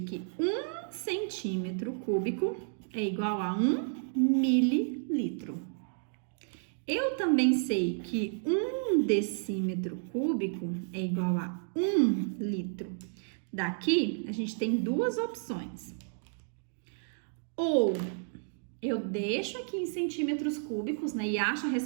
que 1 centímetro cúbico é igual a 1 mililitro. Eu também sei que 1 decímetro cúbico é igual a 1 litro. Daqui, a gente tem duas opções. Ou eu deixo aqui em centímetros cúbicos, né, e acho a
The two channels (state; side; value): silent; left; digital silence